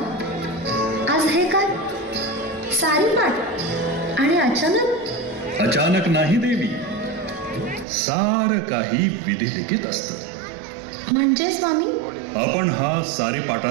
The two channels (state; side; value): drops out; left; at 7.9 s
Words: आज हे काय सारी पाठ आणि अचानक? अचानक नाही देवी, सार काही विधिलिखित असतं. म्हणजे स्वामी? आपण हा